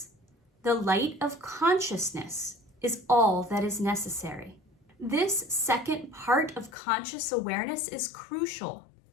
The light of consciousness is all that is necessary. This second part of conscious awareness is crucial.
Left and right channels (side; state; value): right; drops out; at 6.8 s